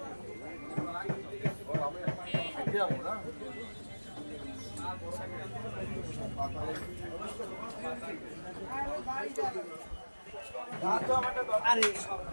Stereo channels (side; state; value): both; inverted; correlation -1.00